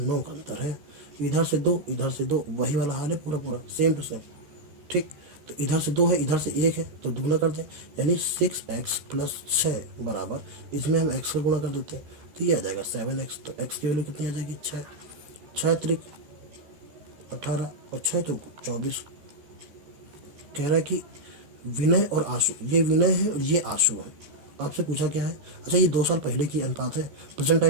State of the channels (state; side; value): late; left; 14 ms